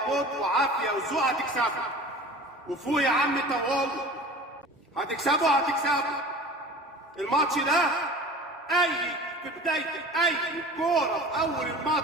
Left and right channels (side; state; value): both; normal; correlation 0.40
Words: موت وعافيه وذوق. هتكسبوا وفوق يا عم طوال، هتكسبوا الماتش ده. اي في بدايه اي كوره في اول